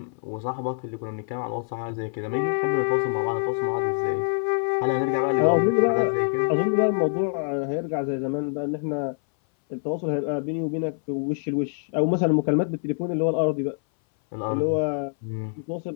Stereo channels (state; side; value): silent; right; 59 dB below the other